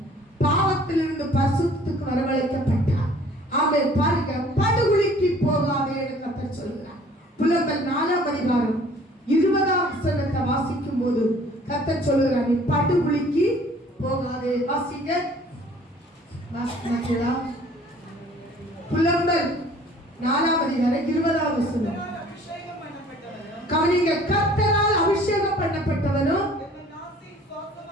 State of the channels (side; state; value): both; normal; correlation 0.53